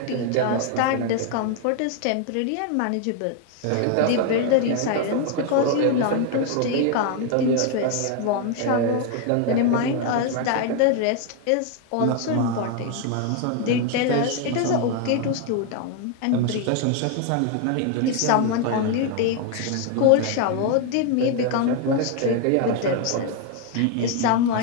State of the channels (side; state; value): both; different; correlation 0.01